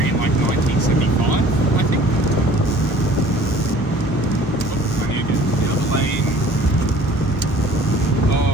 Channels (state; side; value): normal; both; correlation 0.50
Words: in like 1975, I think. Oh, I need to get the other lane.